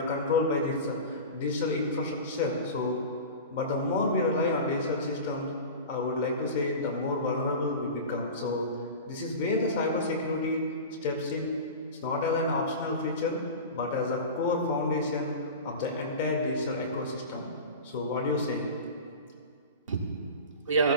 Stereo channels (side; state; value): both; inverted; correlation -0.31